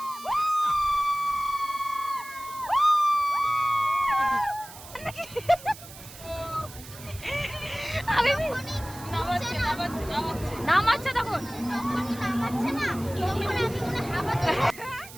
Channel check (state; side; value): noise; right; hiss, 16 dB below the sound